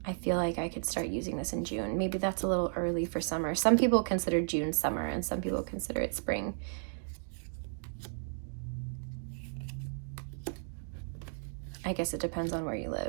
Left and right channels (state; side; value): silent; left; digital silence